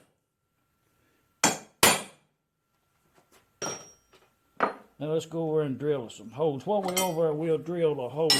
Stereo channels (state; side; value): identical; both; correlation 1.00